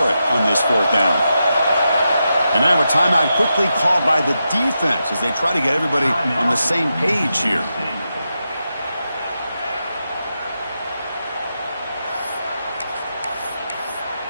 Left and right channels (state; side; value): inverted; both; correlation -0.87